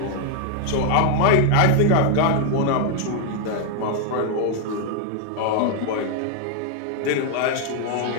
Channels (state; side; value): different; both; correlation 0.00